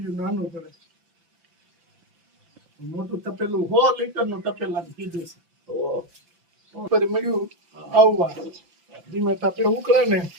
નાનું પડે. મોટું તપેલું 100 લીટરનું તપેલાનું કીધું છે. ઉપર મળ્યું આવવા ધીમે તાપે ઉકળે ને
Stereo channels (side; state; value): left; late; 5.9 ms